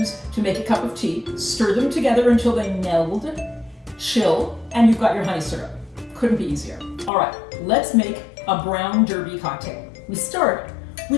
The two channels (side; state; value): right; drops out; at 7.1 s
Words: to make a cup of tea. Stir them together until they meld, chill, and you've got your honey syrup. Couldn't be easier. All right, let's make a Brown Derby cocktail. We start